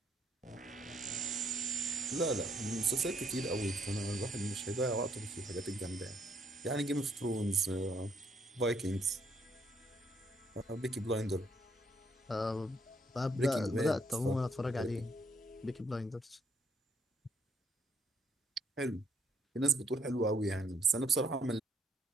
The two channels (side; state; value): both; normal; correlation 0.70